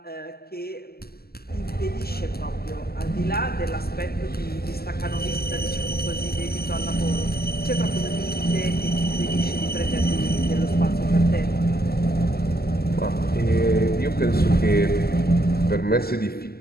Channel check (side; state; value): right; late; 0.45 ms